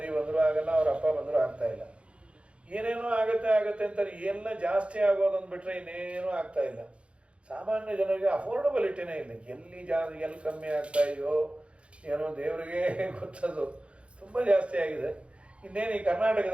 ಬಂದರೂ ಆಗಲ್ಲ, ಅವ್ರ ಅಪ್ಪ ಬಂದರೂ ಆಗ್ತಾ ಇಲ್ಲ. ಏನೇನೋ ಆಗುತ್ತೆ ಅಂತಾರೆ. ಎಲ್ಲ ಜಾಸ್ತಿ ಆಗೋದನ್ನು ಬಿಟ್ಟರೆ ಇನ್ನೇನೂ ಆಗ್ತಾ ಇಲ್ಲ. ಸಾಮಾನ್ಯ ಜನರಿಗೆ ಅಫೋರ್ಡಬಿಲಿಟಿನೇ ಇಲ್ಲ. ಎಲ್ಲಿ ಕಮ್ಮಿ ಆಗ್ತಾ ಇದೆಯೋ ಏನೋ ದೇವರಿಗೆ ಗೊತ್ತದು. ತುಂಬ ಜಾಸ್ತಿ ಆಗಿದೆ. ಇನ್ನೇನು ಈ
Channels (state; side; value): late; left; 0.060 ms